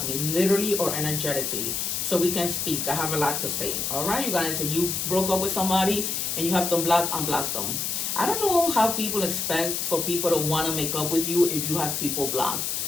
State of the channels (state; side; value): noise; left; hiss, 1 dB below the sound